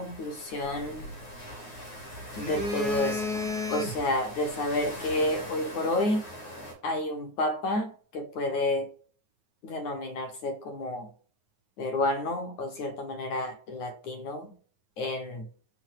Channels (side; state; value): right; late; 9.5 ms